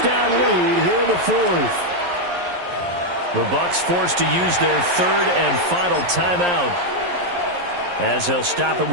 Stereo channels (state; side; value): late; left; 11 ms